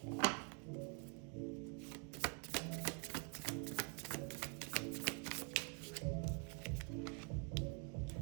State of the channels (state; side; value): quieter; left; 34.5 dB